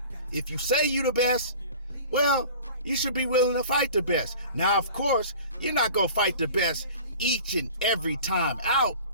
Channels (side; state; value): both; inverted; correlation -0.42